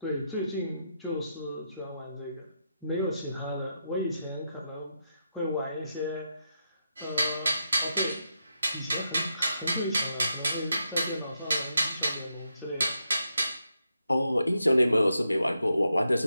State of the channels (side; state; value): both; inverted; correlation -0.83